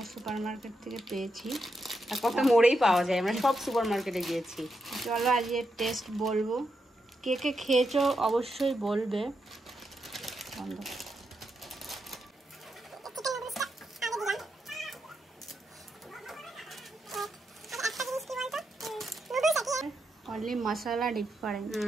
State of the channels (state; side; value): normal; both; correlation 0.84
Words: সুপার মার্কেট থেকে পেয়েছি। আর কত মোড়েই পাওয়া যায়, আমরা সব সুপার মার্কেটে গিয়েছি। চলো আজকে টেস্ট বলবো। কে কে খেয়েছো অবশ্যই বলবে। অনলি মশলা ডিফারেন্ট।